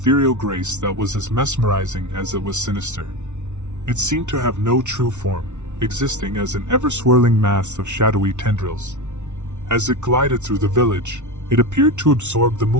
grace that was as mesmerizing as it was sinister. It seemed to have no true form, existing as an ever-swirling mass of shadowy tendrils. As it glided through the village, it appeared to absorb the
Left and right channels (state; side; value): late; left; 0.84 ms